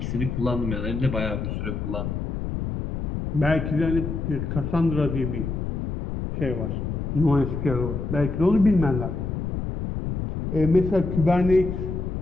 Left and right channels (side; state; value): left; noise; rumble, 3 dB below the sound